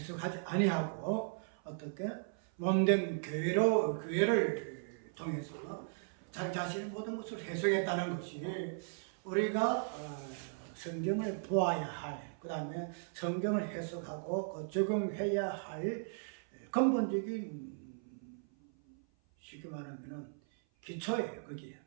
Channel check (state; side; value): silent; left; 53 dB below the other